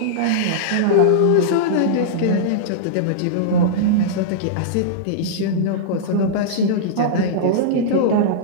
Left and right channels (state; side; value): different; both; correlation -0.03